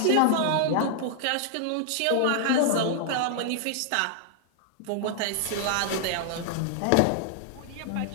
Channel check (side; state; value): both; different; correlation 0.00